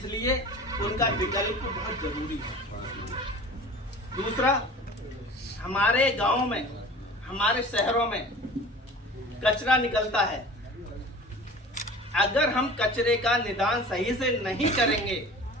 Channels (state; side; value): normal; both; correlation 0.41